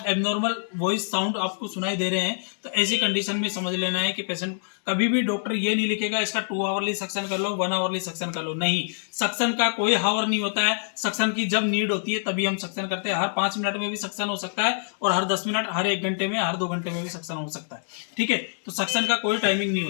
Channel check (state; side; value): silent; right; digital silence